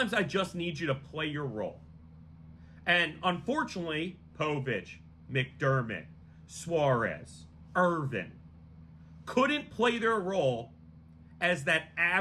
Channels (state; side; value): identical; both; correlation 1.00